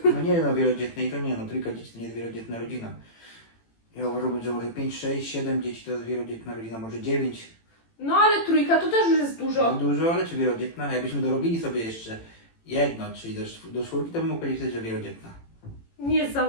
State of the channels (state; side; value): late; right; 18 ms